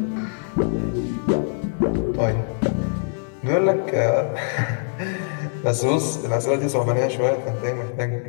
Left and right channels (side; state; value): right; silent; digital silence